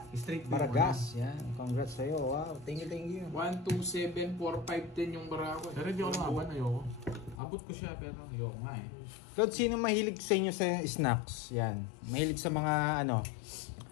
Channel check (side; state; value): right; drops out; at 7.4 s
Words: Straight Baragas, yan. Congrats sa'yo. Wow, thank you. 1, 2, 7, 4, 5, 10 yung barako. Pero hindi ako lumaban. Ayoko. Abot ko siya pero ayoko nga eh. Claude, sino mahilig sa inyo sa snacks? Yan. Mahilig sa mga